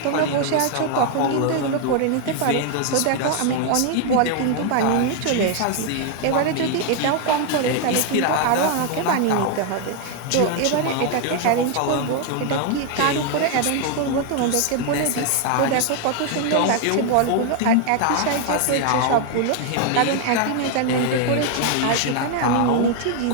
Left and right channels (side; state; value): both; different; correlation 0.00